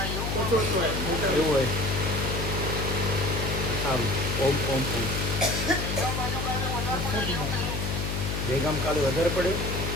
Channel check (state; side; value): noise; left; hum, 2 dB below the sound